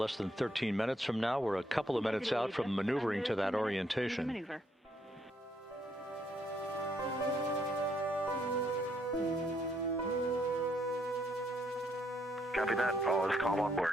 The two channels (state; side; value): normal; both; correlation 0.72